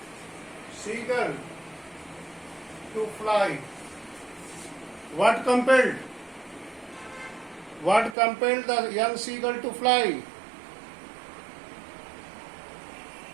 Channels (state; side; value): drops out; left; at 8.2 s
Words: to fly? What compelled the young seagull to fly?